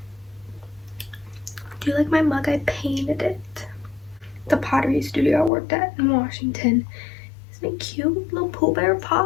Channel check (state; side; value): drops out; right; at 5.5 s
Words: Do you like my mug? I painted it. The pottery studio I worked at in Washington. Isn't it cute? Little Pooh Bear